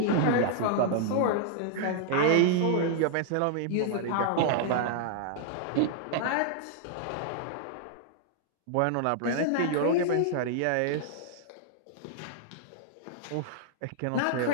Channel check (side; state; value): both; different; correlation -0.01